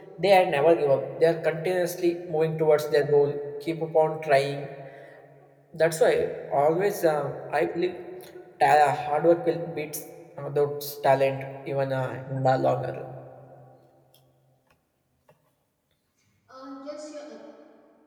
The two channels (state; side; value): identical; both; correlation 1.00